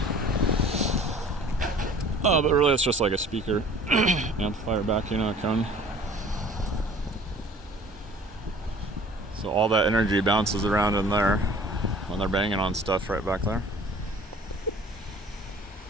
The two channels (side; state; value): both; normal; correlation 0.49